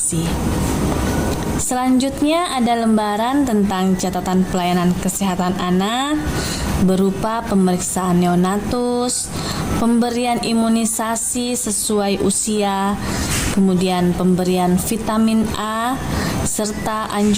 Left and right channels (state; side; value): identical; both; correlation 1.00